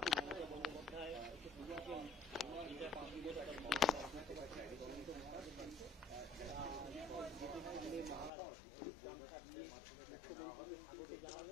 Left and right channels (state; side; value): drops out; right; at 8.3 s